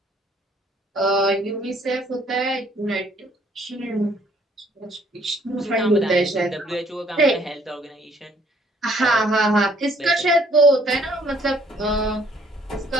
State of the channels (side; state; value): both; normal; correlation 0.63